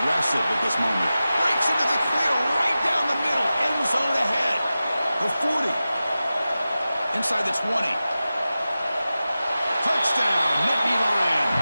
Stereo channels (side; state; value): both; inverted; correlation -0.94